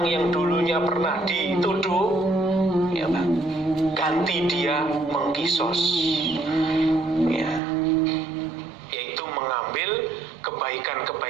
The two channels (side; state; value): left; drops out; at 7.6 s